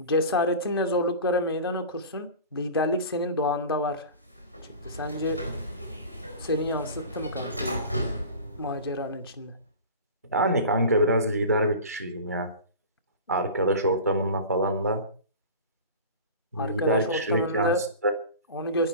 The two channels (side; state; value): both; inverted; correlation -0.35